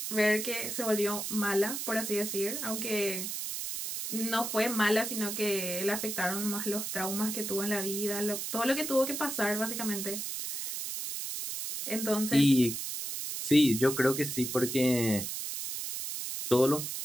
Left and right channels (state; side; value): noise; right; hiss, 4 dB below the sound